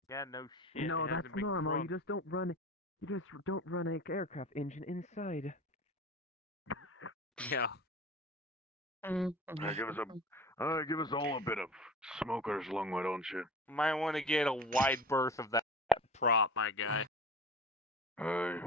Yeah, no shit. No, it that's hasn't been normal. crunk. You just don't run an aircraft engine inside. Yeah. Give us all a bit of smoker's lung, why don't you? Might want to get a wide berth of that prop, my guy.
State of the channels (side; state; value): both; normal; correlation 0.37